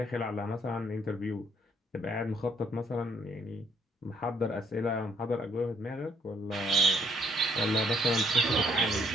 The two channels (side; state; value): both; normal; correlation 0.67